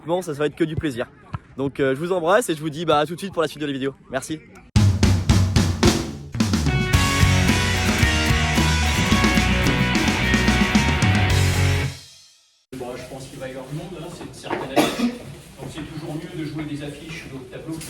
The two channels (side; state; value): both; identical; correlation 1.00